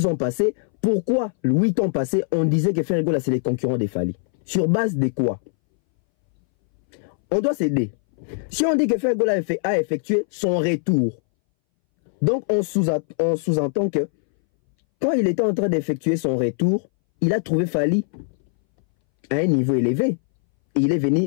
ans passés? Pourquoi 8 ans passés on disait que Ferregola c'est les concurrents des Fally? Sur base de quoi? On doit s'aider. Si on dit que Ferregola a effectué son retour, donc on sous-entend que quand il était en train d'effectuer son retour, il a trouvé Fally à un niveau élevé. il est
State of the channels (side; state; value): right; silent; 62 dB below the other